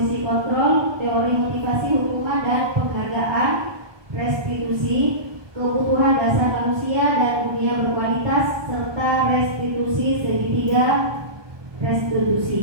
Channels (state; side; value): late; left; 1.2 ms